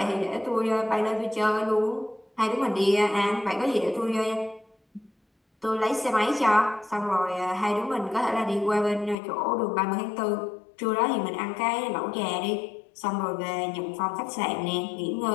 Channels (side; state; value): right; drops out; at 9.2 s